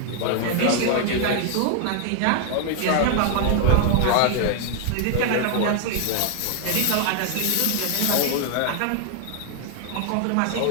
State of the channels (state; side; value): different; both; correlation 0.00